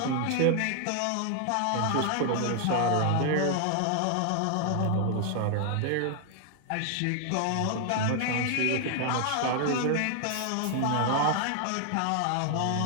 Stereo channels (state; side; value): different; both; correlation 0.00